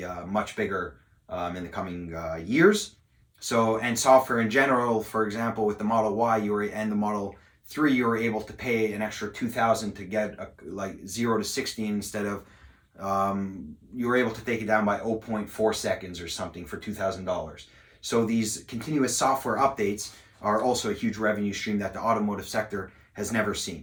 much bigger in the coming years. So, and software in general, for example, with the Model Y and the Model 3, you were able to pay an extra $2,000 to get like 0 to 60 instead of you were able to take it down by 0.4 seconds or something for $2,000. So these continuous software updates are also a huge revenue stream that the automotive sector has never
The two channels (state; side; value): identical; both; correlation 1.00